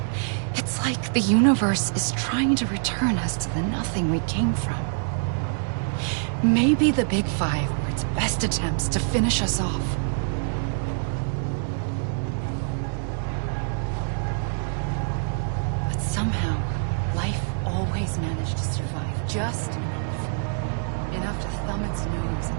It's like the universe is trying to return us to the nothing we came from. Maybe the Big Five were its best attempts to finish us off. But somehow, life always managed to survive just enough. Enough to thumb its nose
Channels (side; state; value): left; silent; digital silence